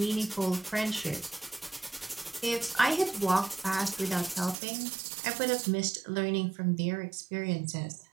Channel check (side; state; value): left; drops out; at 4.5 s